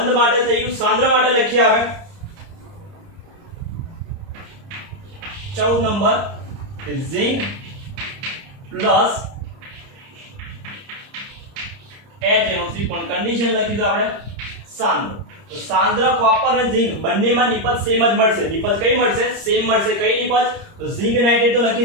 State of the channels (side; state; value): left; late; 30 ms